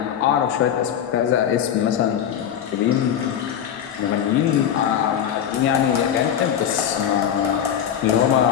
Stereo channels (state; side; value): quieter; right; 9.4 dB